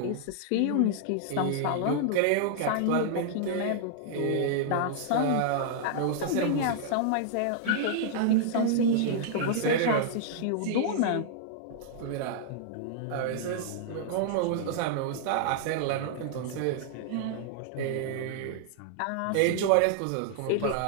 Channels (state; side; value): different; both; correlation -0.01